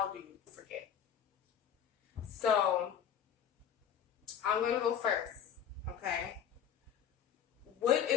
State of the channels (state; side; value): quieter; right; 8.7 dB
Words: do you forgive? So I'm gonna go first. Okay. What